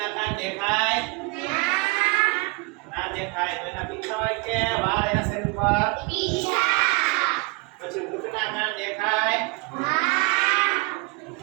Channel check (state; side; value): quieter; left; 26.4 dB